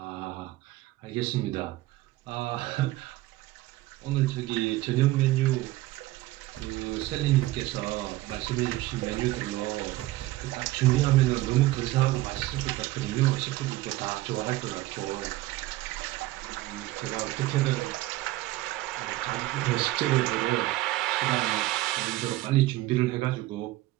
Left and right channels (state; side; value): quieter; left; 17.4 dB